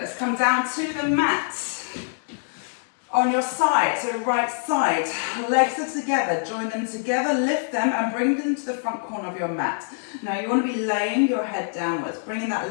come down to the mat. On your side, so right side, legs are together, join them together, lift them and bring them to the front corner of your mat. Now you want to be laying your head downwards, bringing that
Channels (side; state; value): right; silent; digital silence